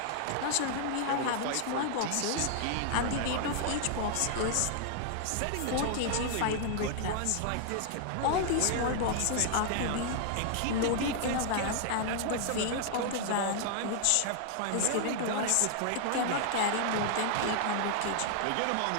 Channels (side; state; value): both; different; correlation 0.00